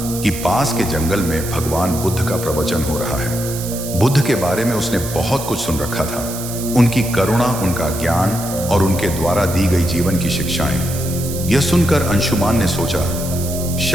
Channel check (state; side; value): noise; right; hiss, 9 dB below the sound